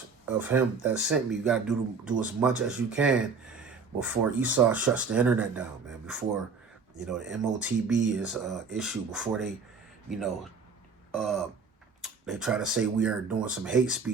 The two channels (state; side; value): quieter; left; 5.1 dB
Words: of him that sent me. You got to do as much as you can before Esau shuts the internet down, man. Before, you know, the MOTB is issued, before they, you know, they try to say we are doing some hate